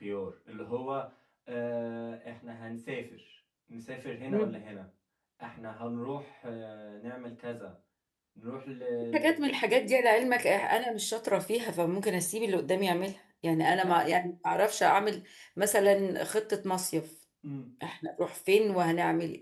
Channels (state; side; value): identical; both; correlation 1.00